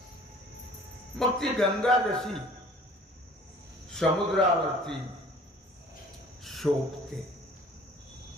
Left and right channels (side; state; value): both; normal; correlation 0.50